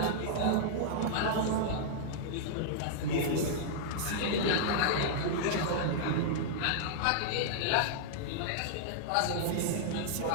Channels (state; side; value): different; both; correlation -0.02